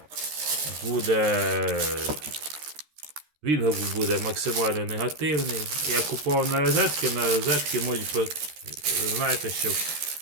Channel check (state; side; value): late; left; 13 ms